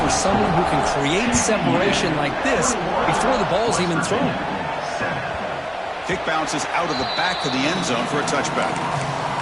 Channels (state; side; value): identical; both; correlation 1.00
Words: someone who can create separation like this before the ball's even thrown. Kick bounces out of the back of the end zone for a touchback.